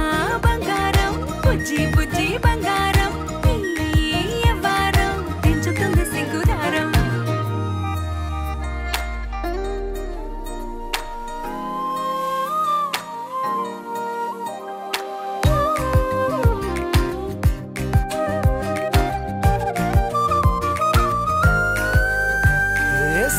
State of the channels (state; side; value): identical; both; correlation 1.00